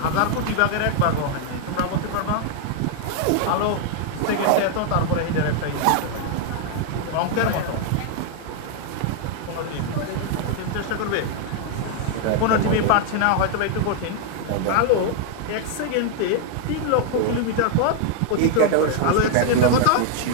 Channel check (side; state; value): both; different; correlation 0.00